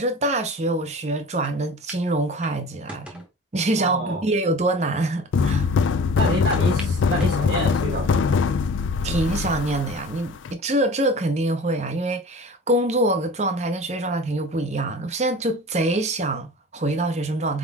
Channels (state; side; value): normal; both; correlation 0.40